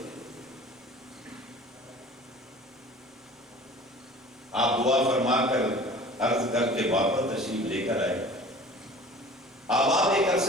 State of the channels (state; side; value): normal; both; correlation 0.44